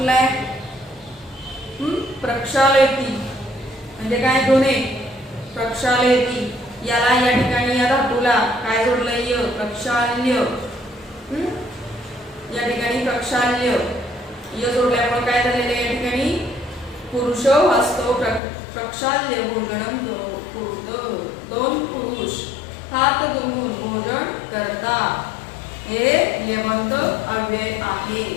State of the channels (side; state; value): right; drops out; at 18.4 s